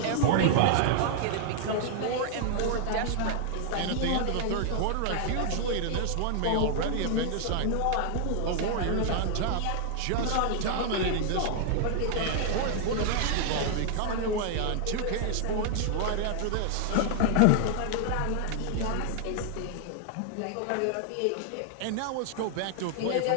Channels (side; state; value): both; different; correlation 0.00